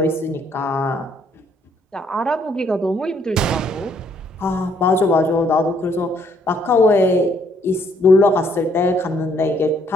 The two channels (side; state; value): both; normal; correlation 0.67